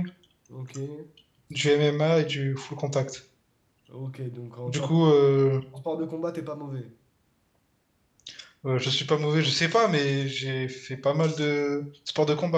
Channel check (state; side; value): identical; both; correlation 1.00